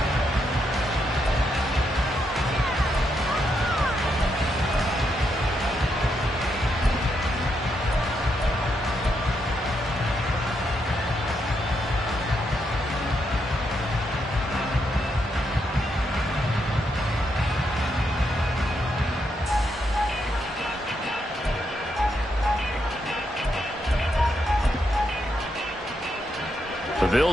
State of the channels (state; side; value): normal; both; correlation 0.80